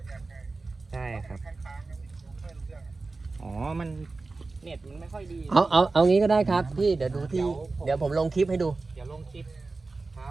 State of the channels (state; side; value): quieter; left; 3.7 dB